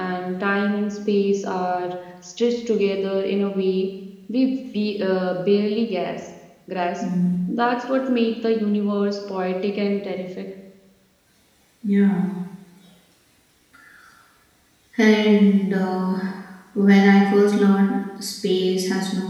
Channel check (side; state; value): both; identical; correlation 1.00